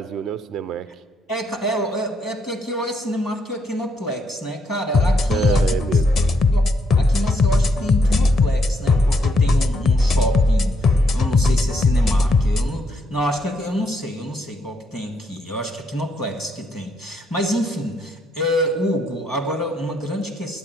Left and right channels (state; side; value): normal; both; correlation 0.75